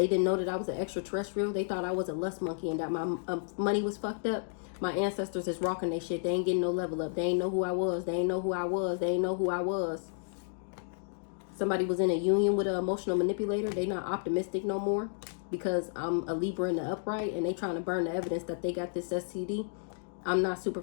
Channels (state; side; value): silent; right; digital silence